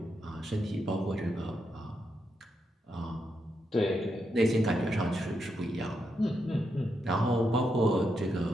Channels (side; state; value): both; normal; correlation 0.83